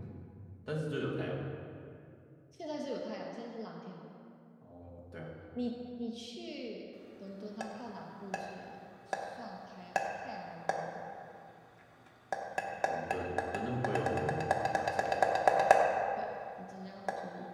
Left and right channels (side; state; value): both; identical; correlation 1.00